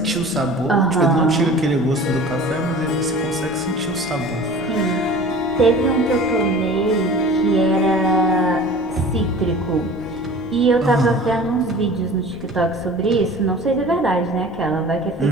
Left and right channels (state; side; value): noise; left; rumble, 18 dB below the sound